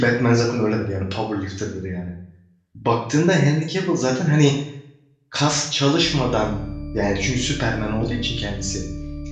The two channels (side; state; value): both; identical; correlation 1.00